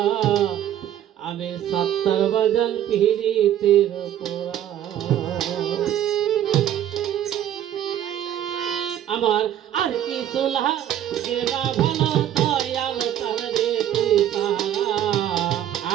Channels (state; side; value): quieter; left; 11.2 dB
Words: আমি সত্তর বাজান পিরিতের পোড়া আমার আর কিছু গেনা ভালো দয়াল চাঁদরে তুই সারা